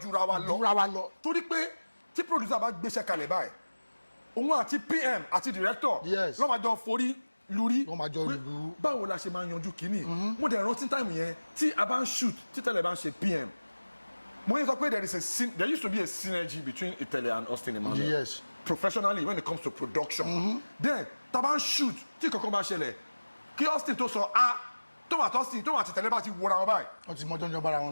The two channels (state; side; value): inverted; both; correlation -1.00